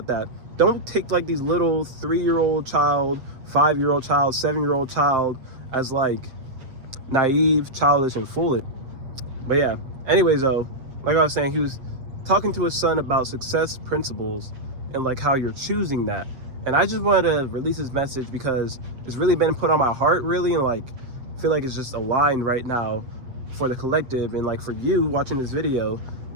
that. Don't take like these little 3-year-old child, 5-year-old child, 7-year-old child as like naive, childish, and foolish. But yeah, anyways though, like I was saying, he was talking to his son about success principles and like how you're choosing that. And I just wanted to release this message because it's really been put on my heart, really, and like I feel like it's just aligned right now for the collective, and like for you watching this video,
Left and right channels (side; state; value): left; late; 7.6 ms